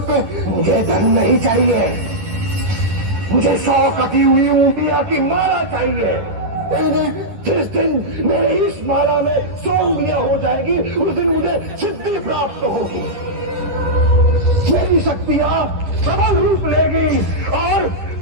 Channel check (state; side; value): late; left; 10 ms